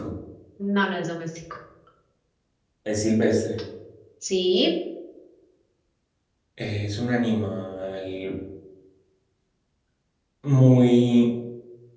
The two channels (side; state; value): both; identical; correlation 1.00